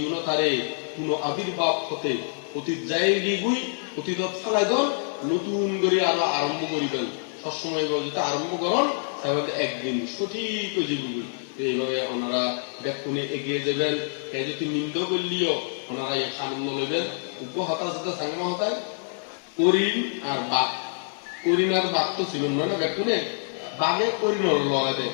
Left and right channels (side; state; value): right; silent; 60 dB below the other